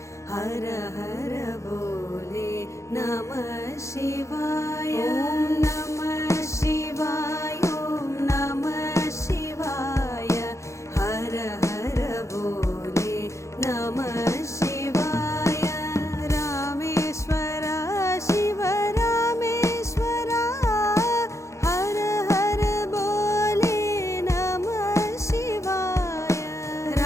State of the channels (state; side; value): late; right; 0.14 ms